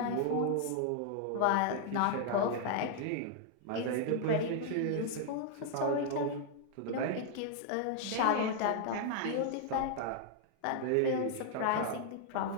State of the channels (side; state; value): both; different; correlation 0.00